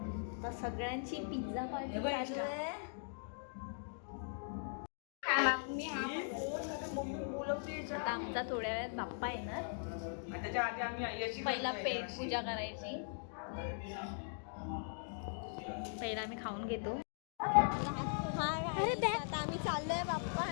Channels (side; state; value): right; silent; digital silence